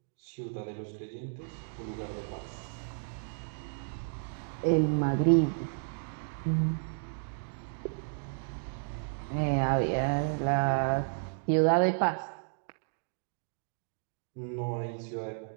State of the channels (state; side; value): silent; left; digital silence